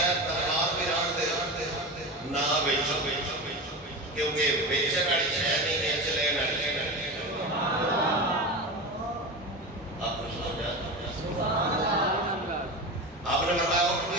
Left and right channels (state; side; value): normal; both; correlation 0.25